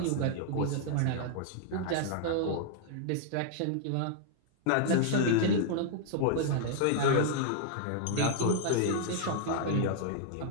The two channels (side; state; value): both; different; correlation -0.01